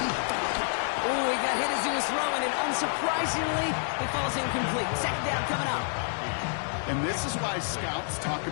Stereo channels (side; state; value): right; silent; 59 dB below the other